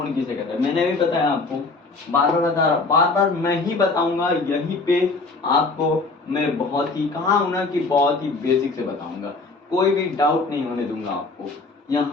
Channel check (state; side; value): quieter; right; 3.7 dB